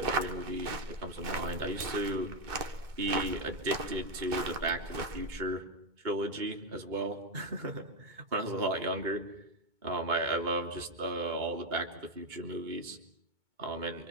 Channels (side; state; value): left; late; 2.2 ms